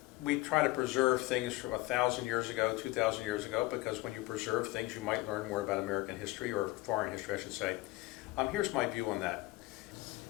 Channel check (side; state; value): right; quieter; 20.1 dB